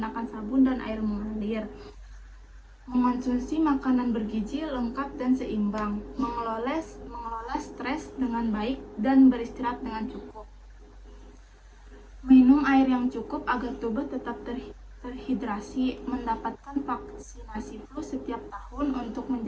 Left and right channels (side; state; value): both; identical; correlation 1.00